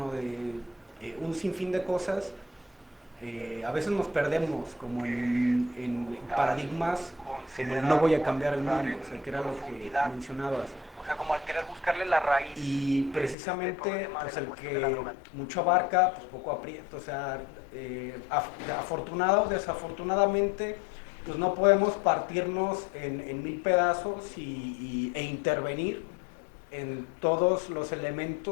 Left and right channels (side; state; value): right; drops out; at 13.4 s